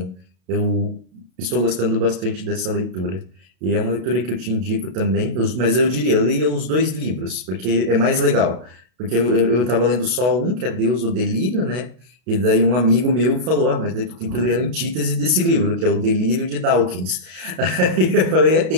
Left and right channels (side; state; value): left; late; 33 ms